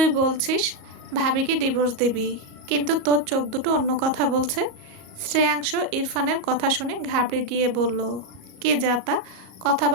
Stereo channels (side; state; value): left; late; 38 ms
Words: বলছিস ভাবিকে ডিভোর্স দিবি, কিন্তু তোর চোখ দুটো অন্য কথা বলছে। শ্রেয়াংশ ইরফানের কথা শুনে ঘাবড়ে গিয়ে বলল, কি যাতা